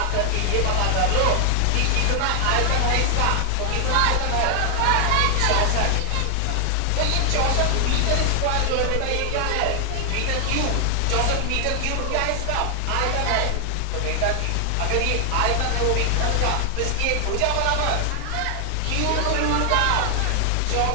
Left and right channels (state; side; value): different; both; correlation 0.00